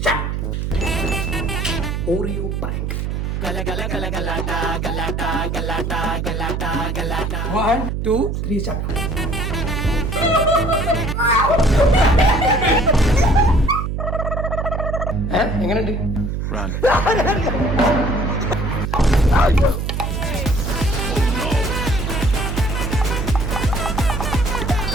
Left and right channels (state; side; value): noise; right; hum, 2 dB below the sound